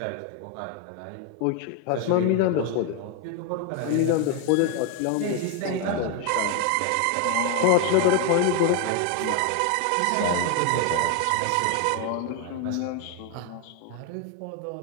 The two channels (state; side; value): different; both; correlation 0.01